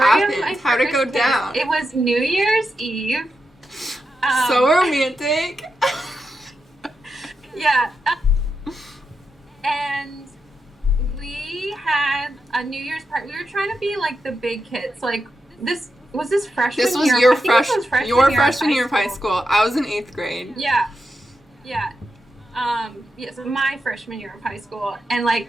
How'd it go down? It was New Year's Eve. So romantic. Yeah. And we had a New Year's party. We were trying to be like the big kids. Like this freshman year. This was your freshman year of high school. I was in 8th grade. Yeah. So my freshman year of high school, and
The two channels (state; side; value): normal; both; correlation 0.87